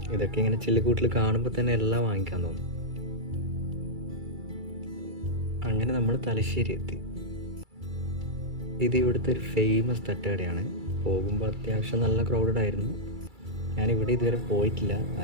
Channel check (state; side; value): late; left; 2.3 ms